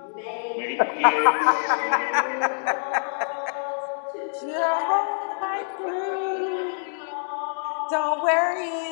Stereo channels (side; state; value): right; silent; digital silence